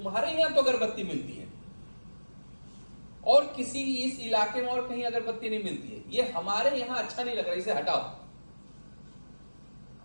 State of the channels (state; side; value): inverted; both; correlation -1.00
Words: यहाँ तो अगरबत्ती मिलती है और किसी इस इलाके में और कहीं अगरबत्ती नहीं मिलती है, ये हमारे यहाँ अच्छा नहीं लग रहा, इसे हटाओ।